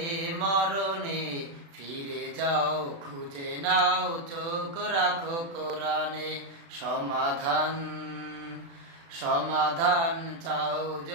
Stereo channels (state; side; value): late; left; 36 ms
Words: মরণে, ফিরে যাও খুঁজে নাও চোখ রাখো কোরআনে। সমাধান চাও